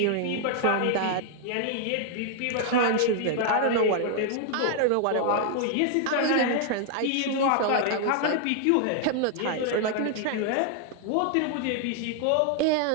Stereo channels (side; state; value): both; different; correlation 0.00